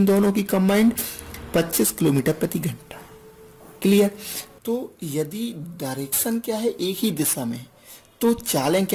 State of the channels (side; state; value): both; identical; correlation 1.00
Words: दोनों की कंबाइंड, 25 किलोमीटर प्रति घंटा। क्लियर? तो यदि डायरेक्शन क्या है, एक ही दिशा में, तो चालें